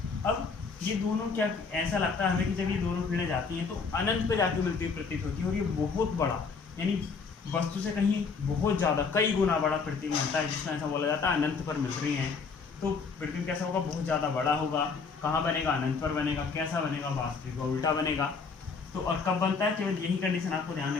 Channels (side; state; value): right; quieter; 5.0 dB